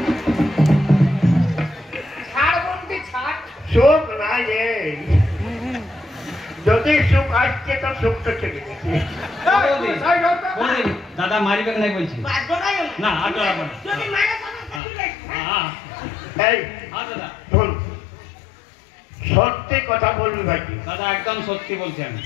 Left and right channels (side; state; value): right; drops out; at 14.8 s